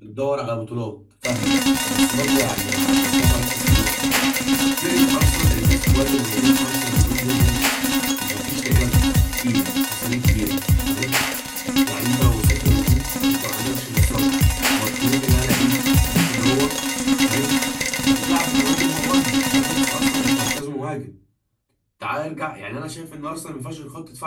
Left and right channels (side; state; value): both; identical; correlation 1.00